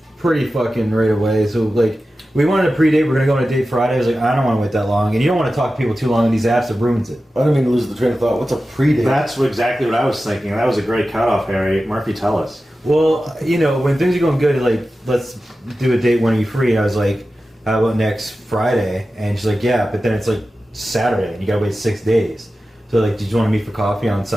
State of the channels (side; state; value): both; normal; correlation 0.94